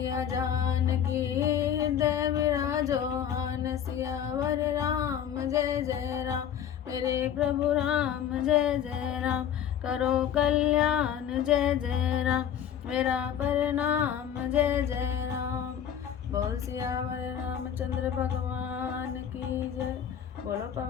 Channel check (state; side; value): quieter; right; 9.3 dB